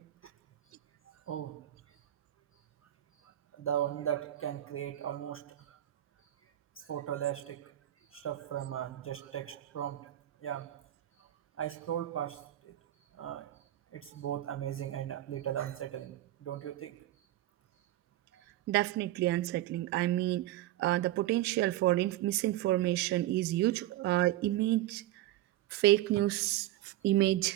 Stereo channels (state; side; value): quieter; left; 14.4 dB